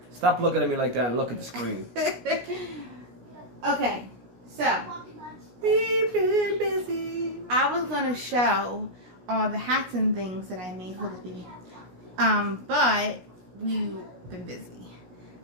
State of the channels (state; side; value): late; left; 16 ms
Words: Stop looking at me like that and look at the screen. Okay, so We've been busy. I was gonna show all the hats and things that I made for the baby. But we've been busy.